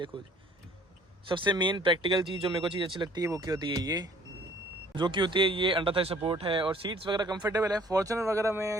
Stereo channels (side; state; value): both; normal; correlation 0.55